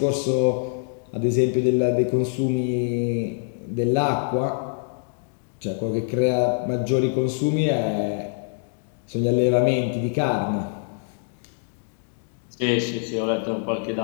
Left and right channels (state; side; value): silent; right; digital silence